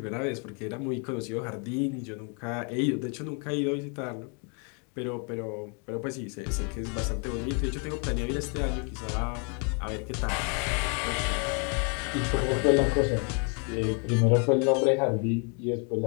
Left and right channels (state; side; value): quieter; right; 37.1 dB